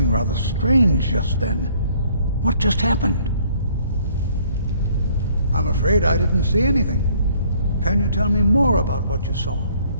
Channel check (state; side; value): inverted; both; correlation -0.61